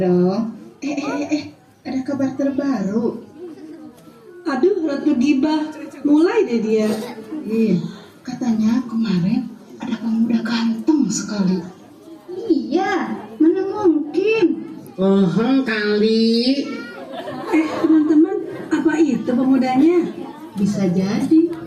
Ada kabar terbaru. Aduh, Ratu Gibah, mulai deh dia. Iya, katanya kemarin ada pemuda ganteng sekali. Iya, mana mungkin. Kali. Teman-teman, Bisa jadi.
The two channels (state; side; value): identical; both; correlation 1.00